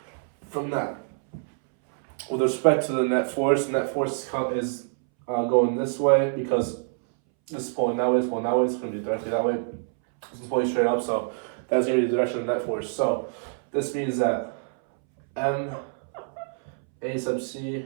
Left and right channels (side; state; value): left; silent; 61 dB below the other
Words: From that, with respect to the net force is going this way because this is pulling that way, it's pulling that way, it's going to be directly that way. This is pulling straight up, so that's going to be the direction of net force. So this means that M A sub C,